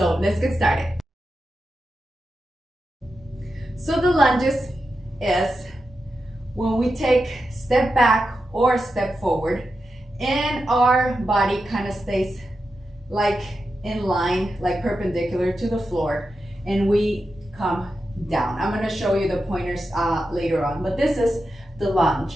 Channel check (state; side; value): normal; both; correlation 0.89